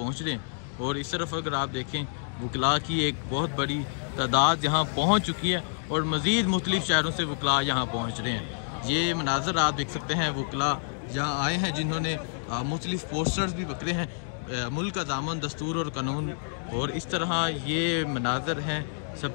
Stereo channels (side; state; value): right; silent; digital silence